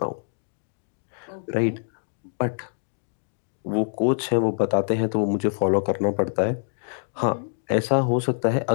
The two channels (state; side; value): silent; right; digital silence